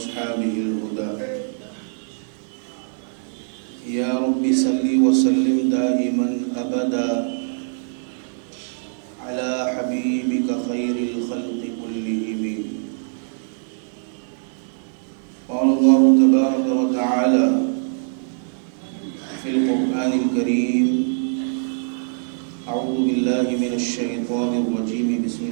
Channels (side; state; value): left; silent; digital silence